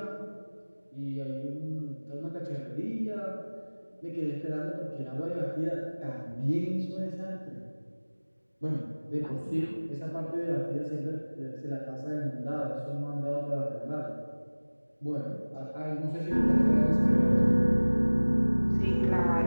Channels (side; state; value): both; inverted; correlation -1.00